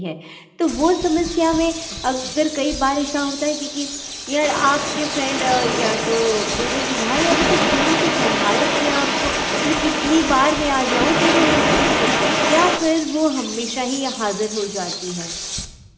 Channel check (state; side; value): identical; both; correlation 1.00